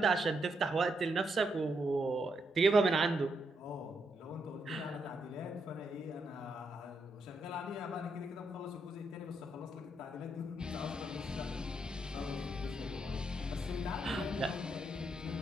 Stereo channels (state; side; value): normal; both; correlation 0.79